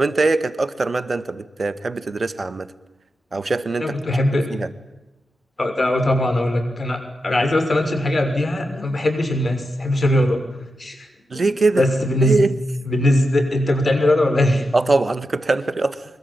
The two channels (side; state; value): both; normal; correlation 0.88